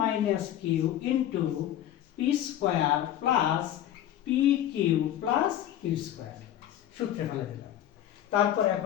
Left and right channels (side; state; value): right; quieter; 11.6 dB